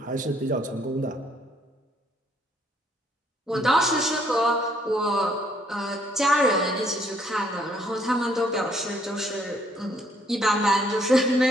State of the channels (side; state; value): both; normal; correlation 0.66